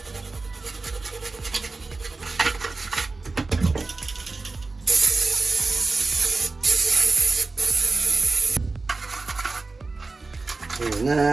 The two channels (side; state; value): left; quieter; 3.7 dB